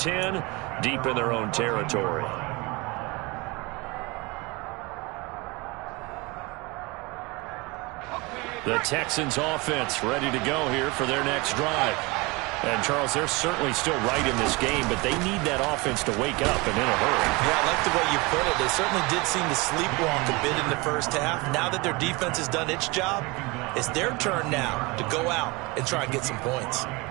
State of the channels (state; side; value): quieter; left; 25.4 dB